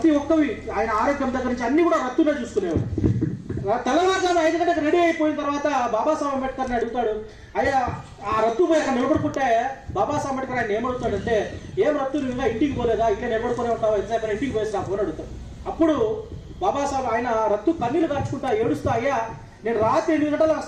ఒక్కవి ఆయన ఆరోగ్యం దగ్గర నుంచి అన్ని కూడా రత్తునే చూసుకునేవాడు. తెల్లవారుజామున 5 గంటలకు రెడీ అయిపోయిన తర్వాత బాబాసాహెబ్ అంబేద్కర్ని అడుగుతాడు, అయ్యా ఆ రత్తు పోయి అక్కడ నిలబడుకుంటే బాబాసాహెబ్ అంబేద్కర్ ఆయన ఏమడుగుతాడంటే, ఏం రత్తు నువ్వు ఇంకా ఇంటికి పోలేదా, ఇట్లా నిలబడుకునే ఉంటావా, ఎంతసేపు ఇంటికి పోయేసి నా ఫోన్ అడుగుతాడు. అప్పుడు బాబాసాహెబ్ ఆయన రత్తు కన్నీళ్ళు కార్చుకుంటా ఏడుస్తా, అయ్యా నేను రాత్రి 8 గంటల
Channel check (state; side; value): identical; both; correlation 1.00